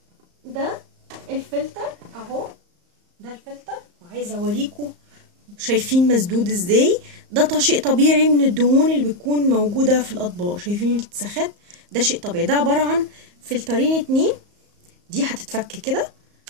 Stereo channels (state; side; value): late; left; 34 ms